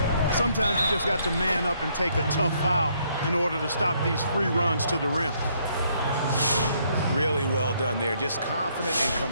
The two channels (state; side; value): inverted; both; correlation -0.70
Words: Sometimes you just got to man up and take a tough foul in order to stop these free runs to the rim. Really well done there. Just confident and